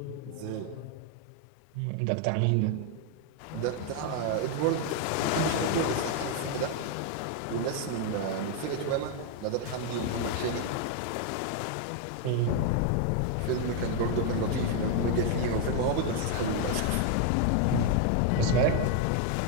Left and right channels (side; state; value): both; different; correlation 0.01